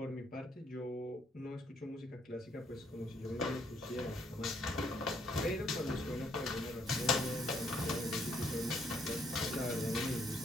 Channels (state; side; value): normal; both; correlation 0.68